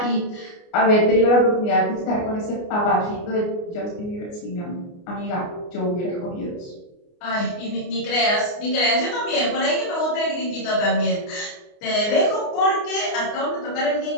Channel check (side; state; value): right; late; 29 ms